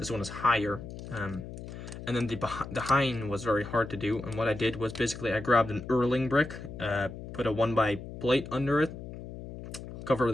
one is higher. And then the hind was very hard to do, and what I did was basically I grabbed an Erling brick, put a 1x plate under it,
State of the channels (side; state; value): left; noise; hum, 11 dB below the sound